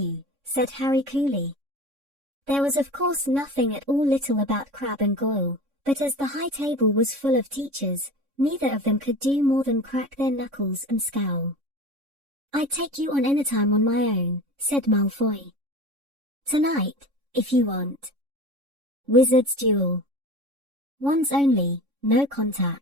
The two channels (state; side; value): late; left; 3.6 ms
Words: said Harry coolly. There was of course nothing at all little about Crabbe and Goyle, but as the high table was full of teachers, neither of them could do more than crack their knuckles and scowl. I'd take you on anytime on my own, said Malfoy. Tonight, if you want. Wizard's duel. Once only, no